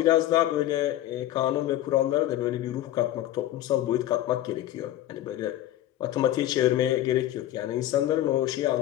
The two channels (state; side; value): quieter; right; 13.6 dB